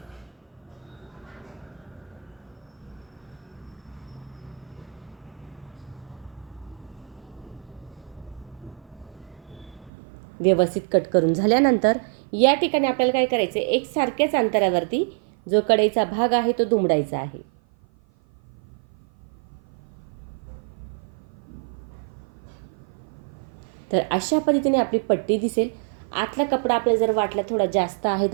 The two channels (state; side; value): drops out; left; at 9.9 s